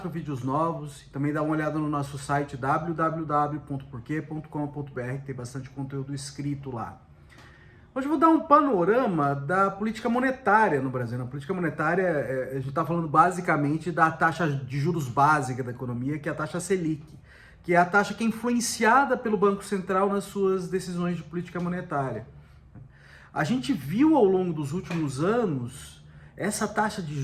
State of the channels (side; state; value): both; identical; correlation 1.00